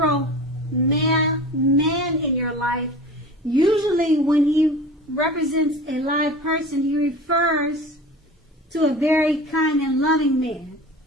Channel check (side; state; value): both; normal; correlation 0.37